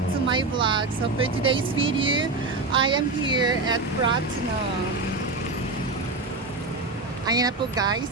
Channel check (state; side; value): quieter; left; 3.6 dB